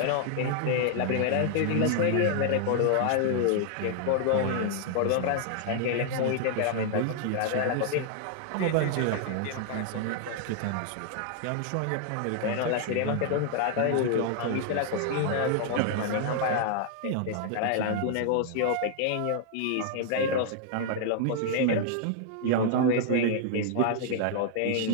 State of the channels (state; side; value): different; both; correlation 0.00